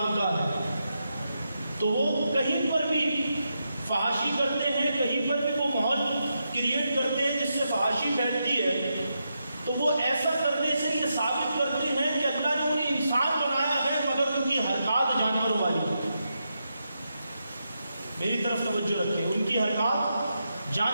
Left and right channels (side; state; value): both; inverted; correlation -0.85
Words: ان کا ہے، تو وہ کہیں پر بھی فحاشی کرتے ہیں، کہیں پر بھی وہ ماحول کریٹ کرتے ہیں جس سے فحاشی پھیلتی ہے، تو وہ ایسا کرنے سے یہ ثابت کرتے ہیں کہ اللہ نے انہیں انسان بنایا ہے مگر ان کی حرکات جانوروں والی۔ میری طرف توجہ رکھیں، ان کی حرکات